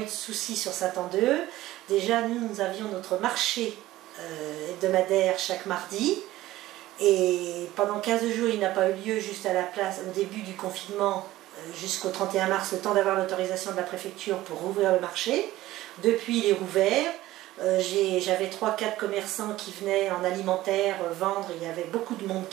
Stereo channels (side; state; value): left; quieter; 16.1 dB